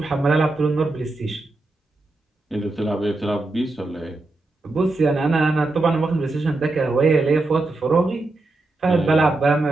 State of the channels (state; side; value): quieter; left; 3.1 dB